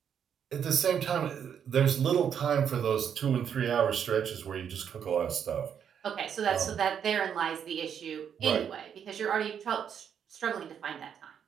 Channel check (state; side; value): quieter; left; 8.2 dB